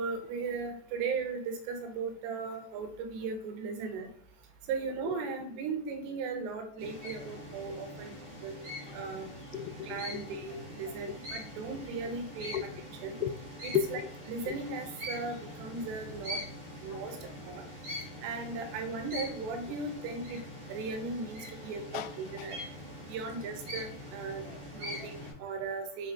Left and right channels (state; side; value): late; left; 14 ms